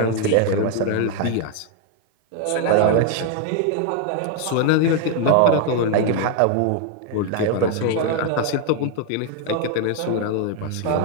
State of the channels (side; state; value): both; different; correlation 0.00